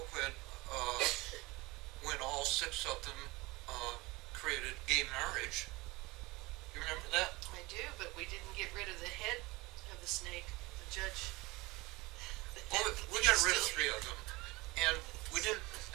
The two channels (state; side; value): quieter; left; 22.5 dB